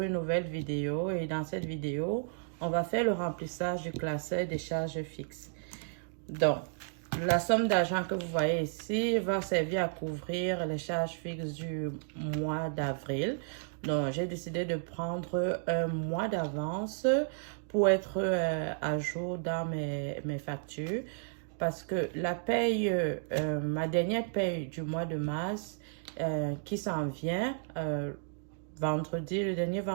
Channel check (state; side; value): silent; left; digital silence